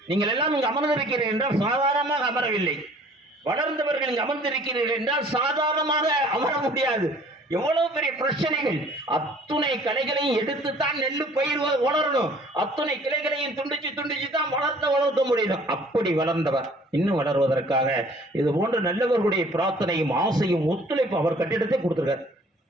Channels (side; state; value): both; normal; correlation 0.54